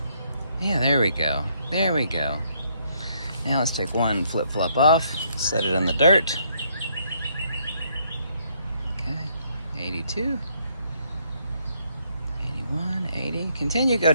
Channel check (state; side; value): inverted; both; correlation -0.70